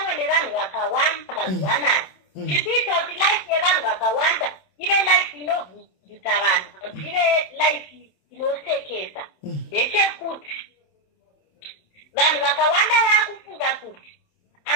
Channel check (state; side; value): late; right; 27 ms